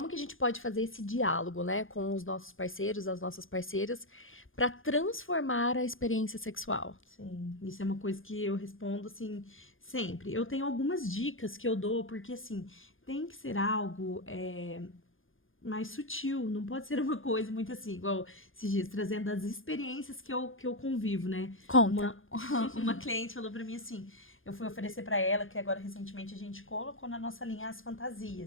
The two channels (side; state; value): right; late; 0.59 ms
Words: que a gente pode fazer esse diálogo, né, com os nossos parceiros, as nossas parceiras, para transformar a experiência sexual? Sim, isso é uma coisa que eu respondo, assim, sempre. Eu tenho algumas dicas que eu dou, porque, assim, tem que ser algo mais sutil, não pode ser uma coisa muito assim, igual esses dias, trazendo as experiências que eu convivo, né? Conta. Uma cliente falou pra mim assim, eu fui oferecer pra ela, que agora recentemente a gente colocou na nossa linha as